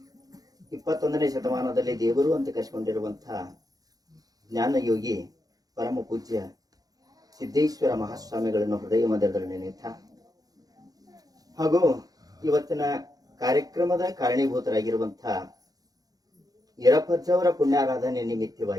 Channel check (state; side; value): late; left; 0.18 ms